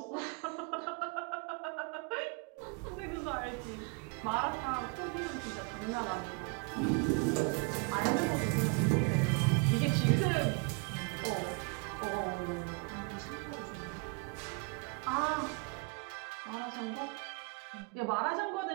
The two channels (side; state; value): left; quieter; 32.6 dB